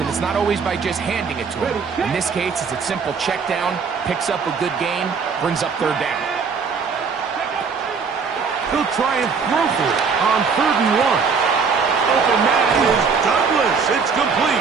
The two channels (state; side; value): quieter; left; 5.5 dB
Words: it's not always by just handing it to them. In this case, it's a simple check down, picks up a good gain, brings up 3rd down. He'll try and throw for it on 3rd and 1. Open man is Douglas. It's